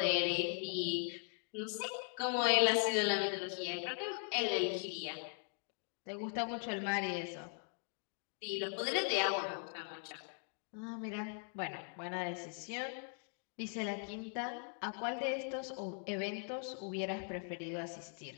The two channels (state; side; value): silent; right; 51 dB below the other